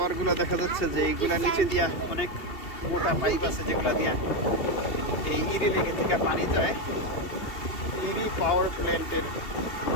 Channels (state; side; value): late; right; 2.7 ms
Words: দেখা যাচ্ছে যে এইগুলা নিচে দিয়া অনেক মোটা পাইপ আছে যেগুলা দিয়া এই ইরি লেকে থেকে পানি যায় ইরি পাওয়ার প্ল্যান্টের